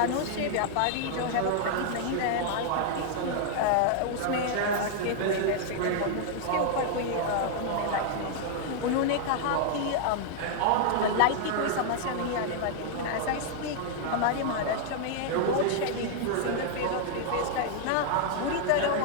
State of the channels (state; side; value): different; both; correlation -0.01